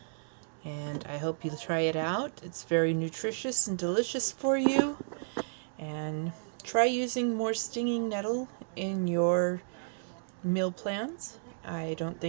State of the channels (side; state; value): left; silent; digital silence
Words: and I hope you try it out. It's very nutritious and delicious for you, and try using more stinging nettle in your meal plans. I don't